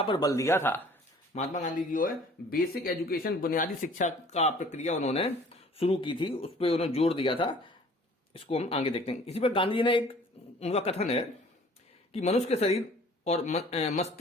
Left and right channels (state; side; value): normal; both; correlation 0.52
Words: पर बल दिया था। महात्मा गांधी जी जो है बेसिक एजुकेशन, बुनियादी शिक्षा का प्रक्रिया उन्होंने शुरू की थी, उस पर उन्होंने जोर दिया था। इसको हम आगे देखते हैं। इसी पर गांधी जी ने एक उनका कथन है कि मनुष्य के शरीर और